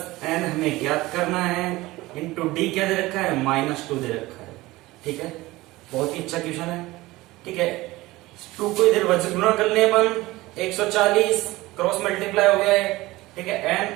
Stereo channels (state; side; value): quieter; left; 19.3 dB